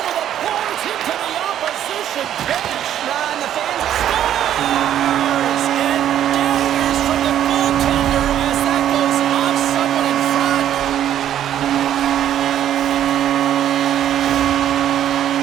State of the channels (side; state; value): left; quieter; 10.9 dB